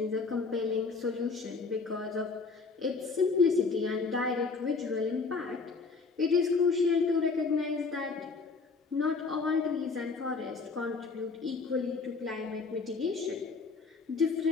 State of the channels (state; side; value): quieter; right; 4.5 dB